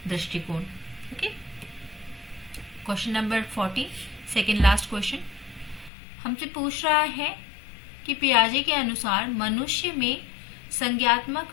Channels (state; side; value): drops out; right; at 5.9 s